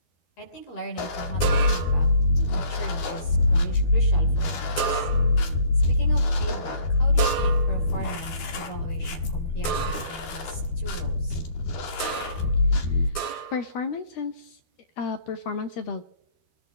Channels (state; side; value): late; right; 12 ms